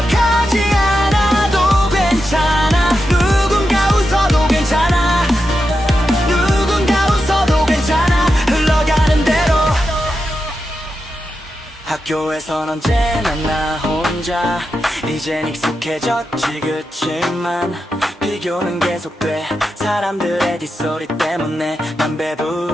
않아도 괜찮아. 누군가 웃어도 괜찮아. 누군가 웃어도 괜찮아. 흘러가는 대로. 학교에선 언제나 나 혼자. 이젠 익숙해졌지. 그치만 비교는 계속돼. 사람들의 뒷소리 때문에 난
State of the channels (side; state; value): both; normal; correlation 0.88